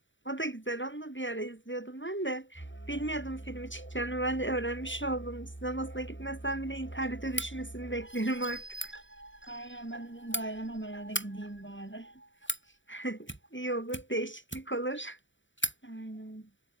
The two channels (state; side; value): late; right; 0.55 ms